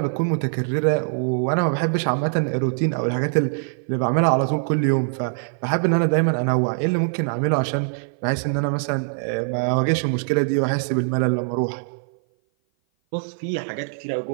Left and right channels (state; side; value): silent; left; 57 dB below the other